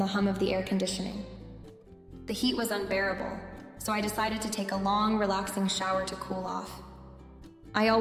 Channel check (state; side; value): identical; both; correlation 1.00